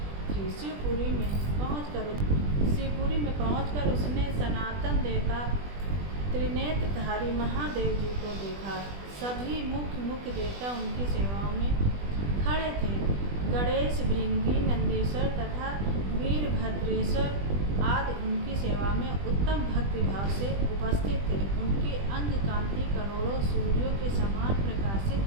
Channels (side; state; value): left; late; 20 ms